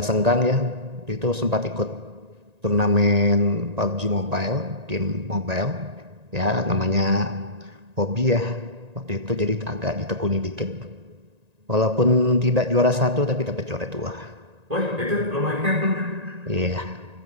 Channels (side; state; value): left; late; 1.9 ms